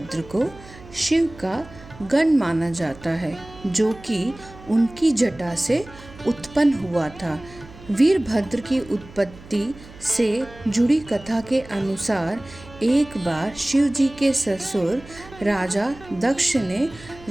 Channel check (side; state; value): right; noise; hum, 19 dB below the sound